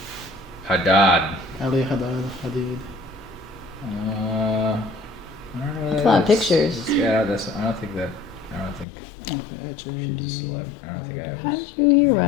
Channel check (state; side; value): drops out; right; at 8.8 s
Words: Haddad. Aaliyah Hadid. I don't know. That's a lot of pictures. Yeah, I don't think. Okay, She's a celeb. I don't think I have. How did you hear